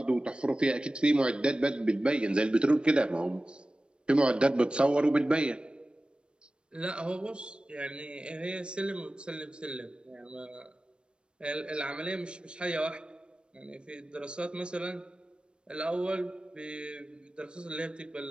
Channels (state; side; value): late; left; 0.055 ms